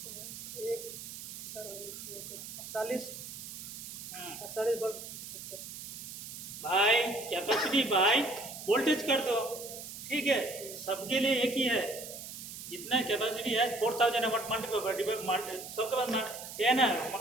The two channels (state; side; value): noise; right; hiss, 10 dB below the sound